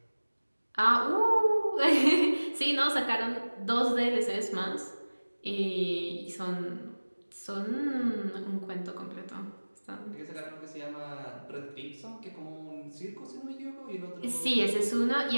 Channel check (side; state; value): both; inverted; correlation -1.00